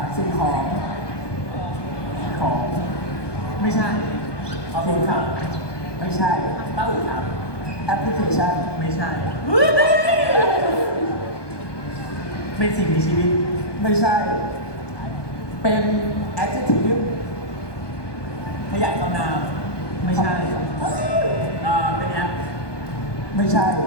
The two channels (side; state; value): right; late; 1.2 ms